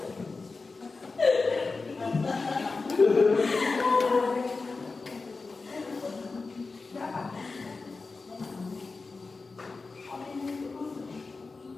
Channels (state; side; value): quieter; right; 4.0 dB